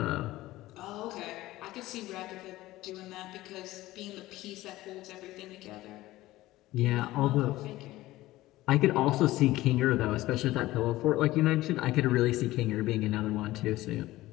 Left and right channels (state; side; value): quieter; right; 17.1 dB